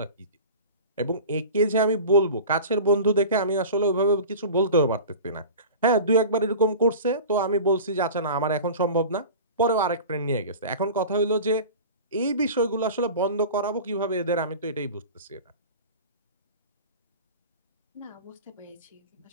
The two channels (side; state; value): both; inverted; correlation -0.35